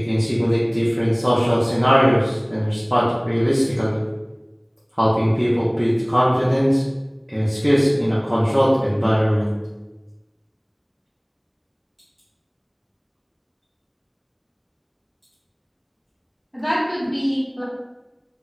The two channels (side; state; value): both; identical; correlation 1.00